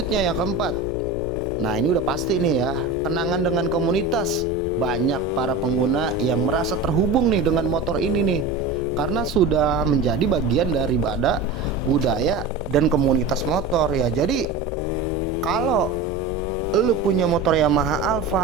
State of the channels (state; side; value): quieter; left; 3.4 dB